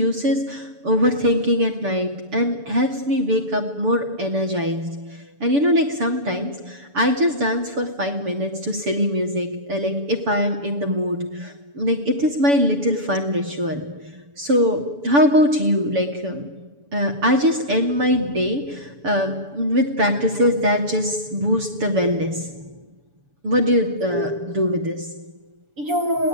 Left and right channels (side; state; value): left; late; 6.9 ms